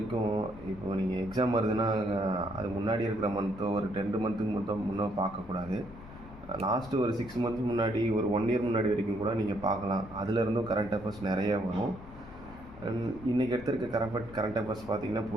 இப்போது நீங்கள் எக்ஸாம் வருதுன்னா அது முன்னாடி இருக்கிற மந்த்தோ ஒரு 2 மந்த்துக்கு மட்டும் முன்னே பார்க்கக்கூடாது. லாஸ்ட்டு ஒரு 6 மந்த்ஸ் முன்னாடி, ஒரு 1 இயர் முன்னாடி வரைக்கும் கூட நீங்கள் பார்க்கலாம். அதிலிருந்தும் கரண்ட் அஃபேர்ஸ் நிறைய வரும். இன்றைக்கி எடுத்திருக்க கரண்ட் அஃபேர்ஸ் பார்த்திங்கன்னா,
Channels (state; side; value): noise; left; rumble, 17 dB below the sound